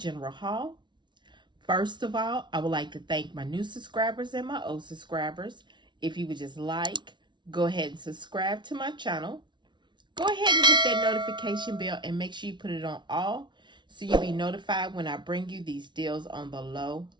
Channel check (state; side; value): late; left; 0.23 ms